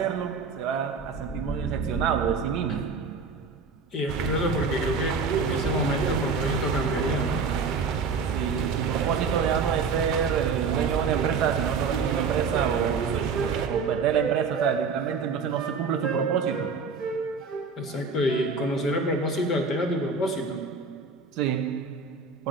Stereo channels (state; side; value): quieter; left; 4.9 dB